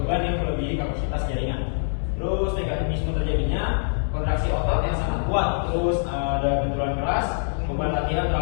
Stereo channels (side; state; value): right; silent; digital silence